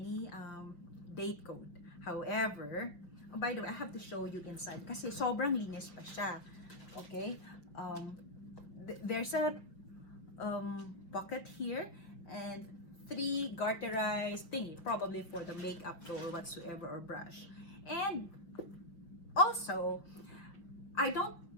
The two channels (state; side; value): late; right; 5.9 ms